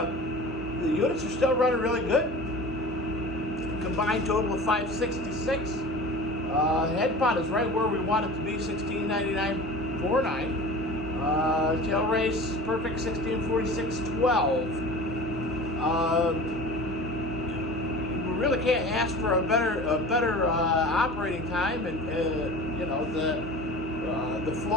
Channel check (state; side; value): normal; both; correlation 0.38